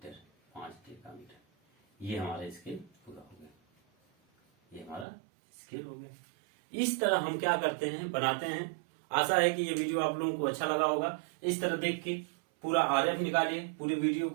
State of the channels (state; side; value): drops out; left; at 5.1 s